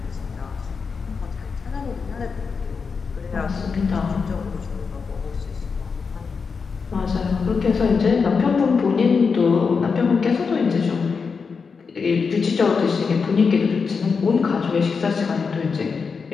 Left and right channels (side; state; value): right; quieter; 5.3 dB